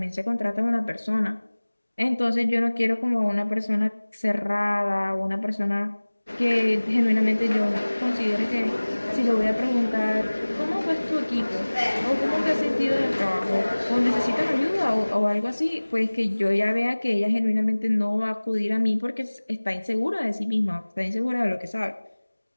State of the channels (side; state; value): both; inverted; correlation -1.00